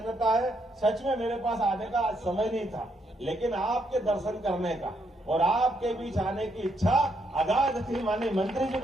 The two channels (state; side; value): normal; both; correlation 0.75